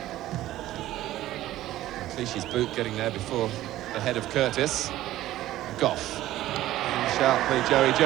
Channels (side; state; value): left; quieter; 14.7 dB